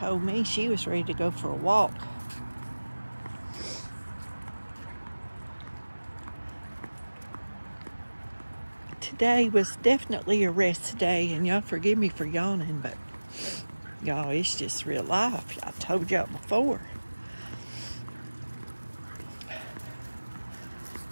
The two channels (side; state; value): both; inverted; correlation -1.00